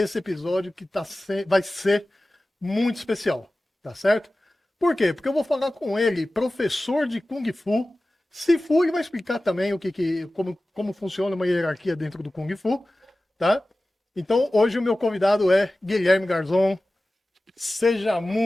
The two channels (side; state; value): both; normal; correlation 0.96